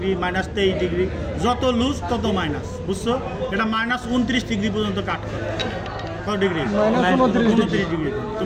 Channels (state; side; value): identical; both; correlation 1.00